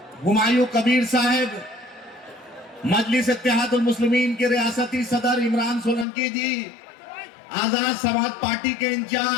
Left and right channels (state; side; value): drops out; right; at 6.1 s